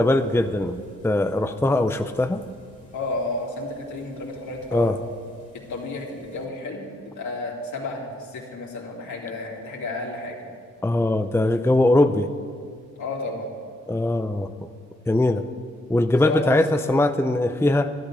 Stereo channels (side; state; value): both; normal; correlation 0.78